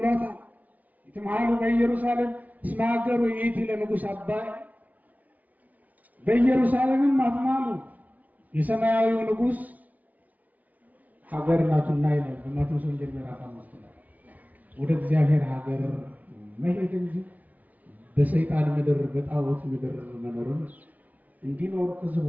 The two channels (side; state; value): left; late; 0.074 ms